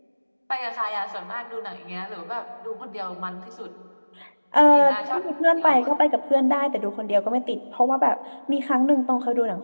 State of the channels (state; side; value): inverted; both; correlation -1.00